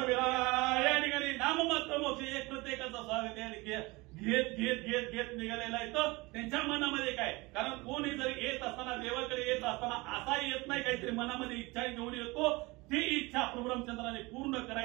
या ठिकाणी नाममात्र मोक्ष एक प्रत्येकाचं स्वागत आहे. घेत निघालेला येतं त्यांच्या मनामध्ये काय कारण कोणी जरी येत असताना देवाकडे येत असताना असा येत नाही काहीतरी मनामध्ये इच्छा घेऊन येतो. ती इच्छा प्रभू रामचंद्राने पूर्ण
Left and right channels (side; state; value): left; quieter; 23.6 dB